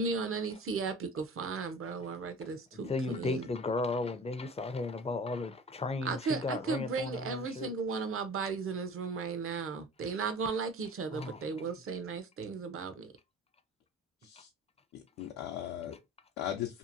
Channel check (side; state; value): both; normal; correlation 0.40